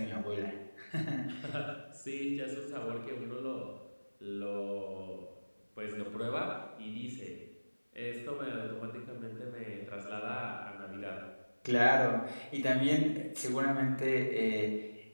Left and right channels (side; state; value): both; inverted; correlation -1.00